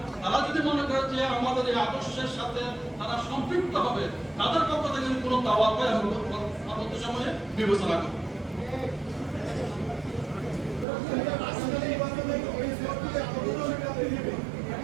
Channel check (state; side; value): drops out; left; at 10.9 s